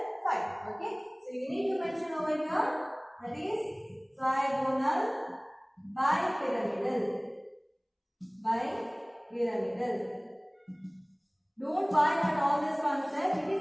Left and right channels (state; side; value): identical; both; correlation 1.00